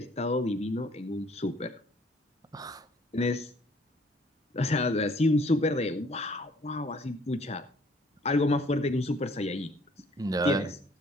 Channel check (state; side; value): normal; both; correlation 0.59